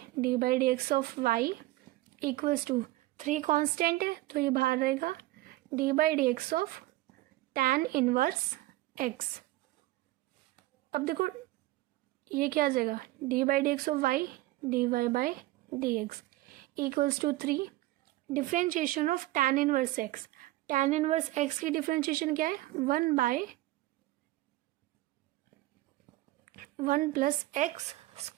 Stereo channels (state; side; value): quieter; left; 18.2 dB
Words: d by D x of y equals to 3 constant है तो ये बाहर रहेगा, d by D x of tan inverse x। अब देखो ये क्या आ जाएगा, d by D x of y dy by dx equals to 3 differentiation of tan inverse x। tan inverse x की डिफ्रेंशिएशन क्या है? 1 प्लस एक्स